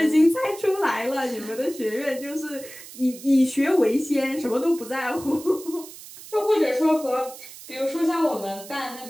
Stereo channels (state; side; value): noise; right; hiss, 16 dB below the sound